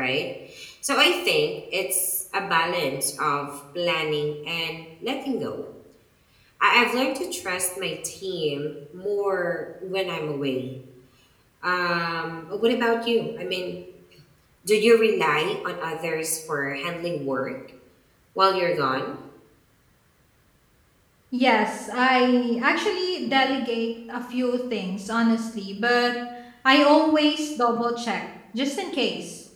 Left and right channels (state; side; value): identical; both; correlation 1.00